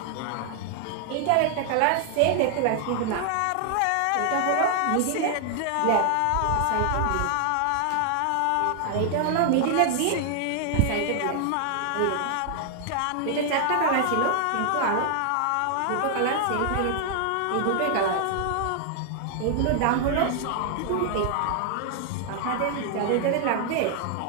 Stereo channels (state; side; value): different; both; correlation 0.00